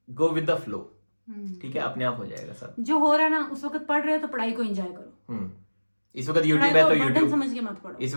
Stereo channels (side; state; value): both; inverted; correlation -1.00